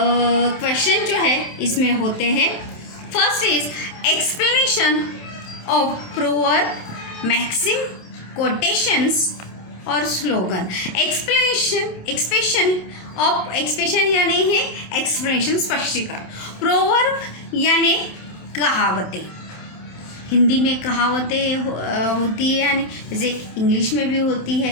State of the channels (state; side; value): late; right; 27 ms